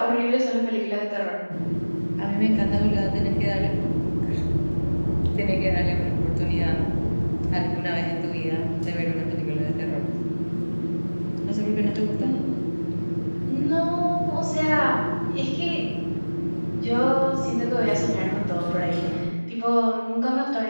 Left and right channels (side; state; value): both; inverted; correlation -1.00